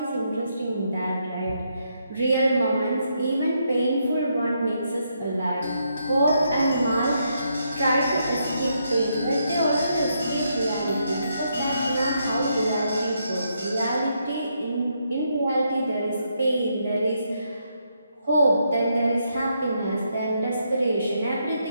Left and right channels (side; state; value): both; inverted; correlation -0.78